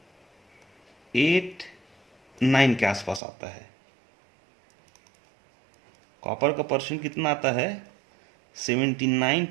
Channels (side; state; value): left; drops out; at 3.2 s